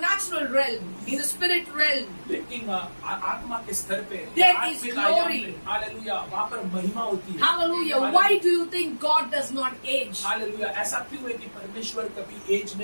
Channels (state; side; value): inverted; both; correlation -1.00